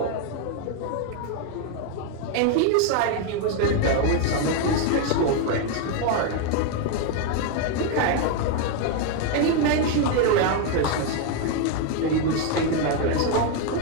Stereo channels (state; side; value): different; both; correlation 0.01